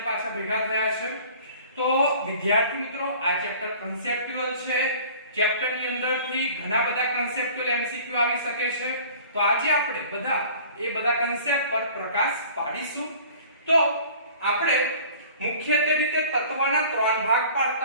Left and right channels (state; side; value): inverted; both; correlation -0.47